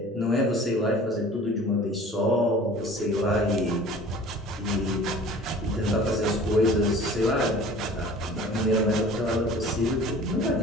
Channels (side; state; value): both; normal; correlation 0.45